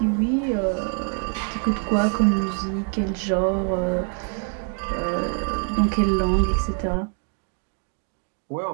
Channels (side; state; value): left; quieter; 39.7 dB